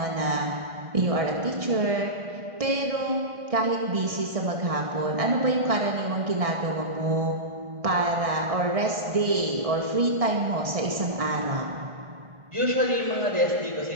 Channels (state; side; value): late; left; 1.6 ms